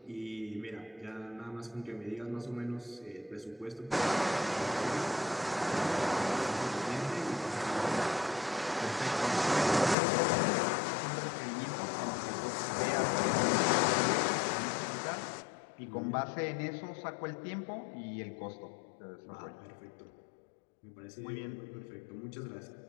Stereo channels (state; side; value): drops out; right; at 10.0 s